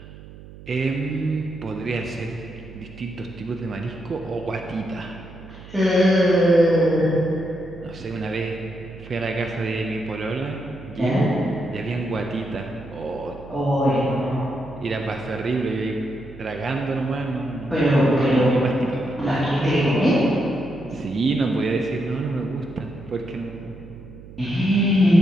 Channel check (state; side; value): noise; right; hum, 17 dB below the sound